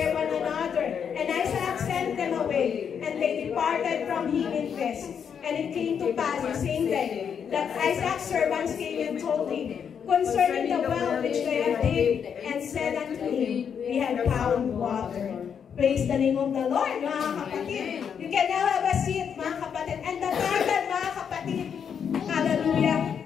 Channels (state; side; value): quieter; right; 7.4 dB